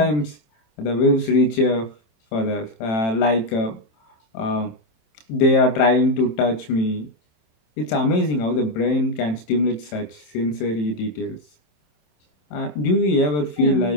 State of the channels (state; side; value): late; right; 27 ms